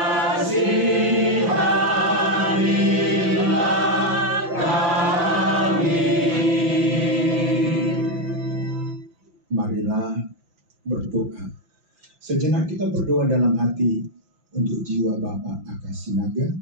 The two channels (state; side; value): late; left; 5.8 ms